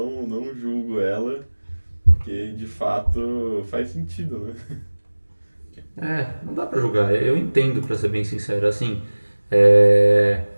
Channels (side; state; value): both; inverted; correlation -1.00